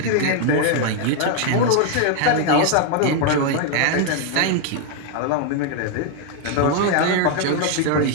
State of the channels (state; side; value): different; both; correlation 0.00